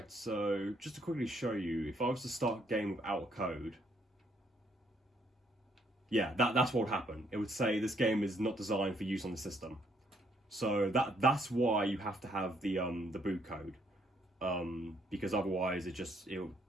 so just to quickly show you, if I was to start a game without a code, yeah, that's what would happen. It would say this game is not designed for use on the system. So that's why you have to have the boot code, because otherwise it'll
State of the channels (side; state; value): both; normal; correlation 0.69